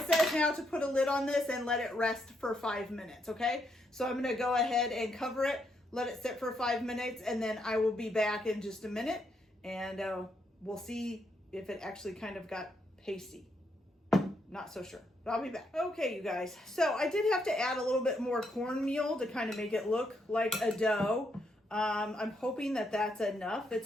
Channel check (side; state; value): both; normal; correlation 0.78